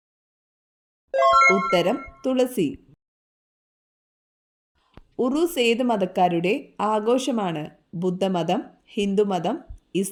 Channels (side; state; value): both; identical; correlation 1.00